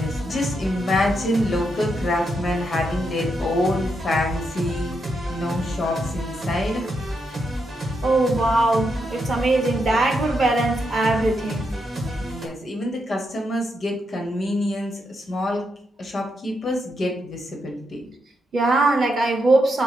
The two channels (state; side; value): normal; both; correlation 0.82